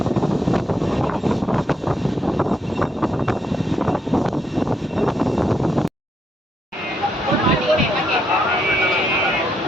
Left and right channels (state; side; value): normal; both; correlation 0.76